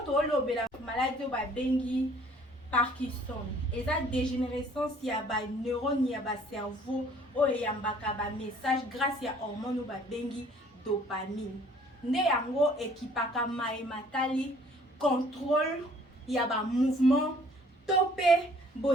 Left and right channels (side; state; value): both; normal; correlation 0.57